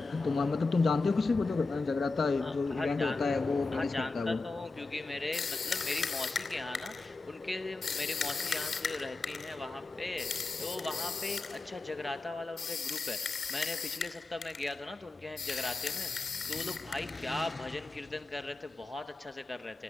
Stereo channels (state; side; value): quieter; right; 3.6 dB